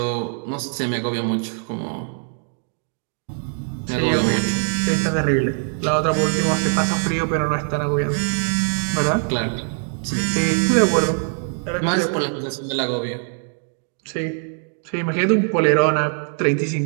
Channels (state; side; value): silent; left; 56 dB below the other